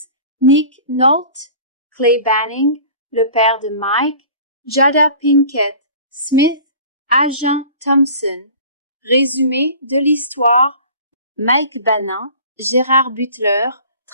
Nick Nolte, Clay Banning, le père de Mike, Jada Pinkett Smith, Agent Thompson. Résumé de l'histoire, Mike Banning, Gerard Butler,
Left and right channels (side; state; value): both; inverted; correlation -0.44